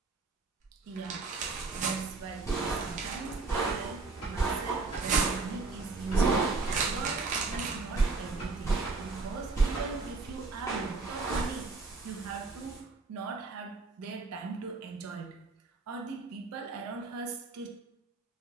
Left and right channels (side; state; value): left; quieter; 3.9 dB